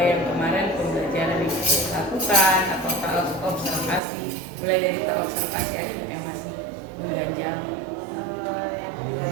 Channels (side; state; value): left; drops out; at 4.0 s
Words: yang kemarin pembelajaran yang dilakukan atau observasi, mulai dari observasi ada nggak yang masih mengganjal? Yang